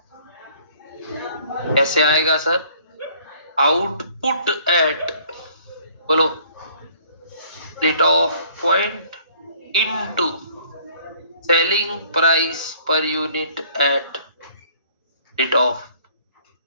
कैसे आएगा सर? आउटपुट एट बोलो rate of point into selling price per unit eight rate of.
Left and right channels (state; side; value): inverted; both; correlation -0.57